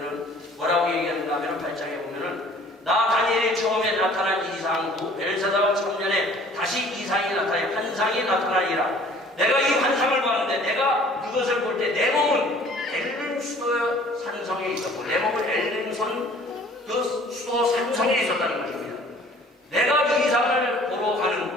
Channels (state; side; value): normal; both; correlation 0.52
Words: 뭐라고 얘기하는가 하면 8장에 보면은 나 다니엘이 처음에 나타난 이상 후 벨사다와 청년에 다시 이상이 나타나요. 환상이 나타나리라. 내가 이 환상을 봤는데 내가 그것을 볼 때 내 몸은 엘림 수도 산성에 있었고 내 몸은 엘림선 그 수도 산성에 있었다는 것입니다. 내가 이 이상을 보러